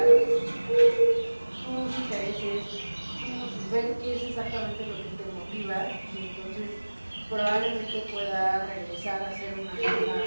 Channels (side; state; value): both; inverted; correlation -1.00